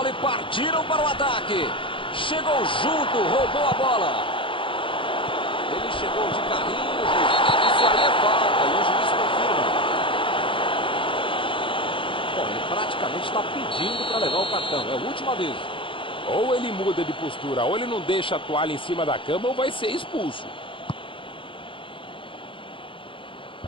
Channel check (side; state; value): right; late; 0.25 ms